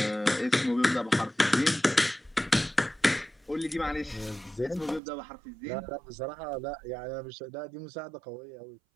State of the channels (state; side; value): drops out; left; at 5.0 s